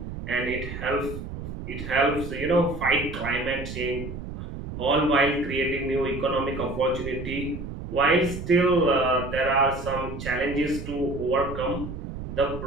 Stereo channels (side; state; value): right; noise; rumble, 8 dB below the sound